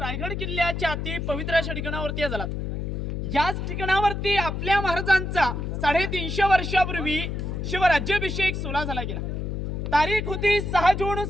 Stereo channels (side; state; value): left; noise; hum, 3 dB below the sound